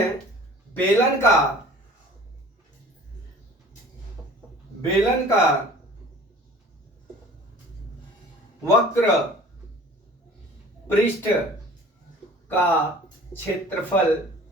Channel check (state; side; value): normal; both; correlation 0.46